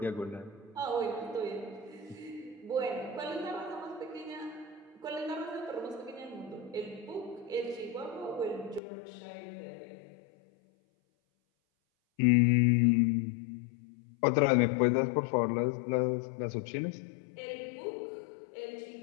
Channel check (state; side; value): drops out; right; at 8.8 s